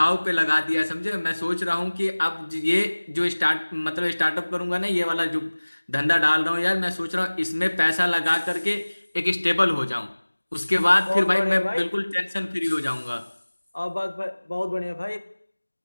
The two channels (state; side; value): inverted; both; correlation -1.00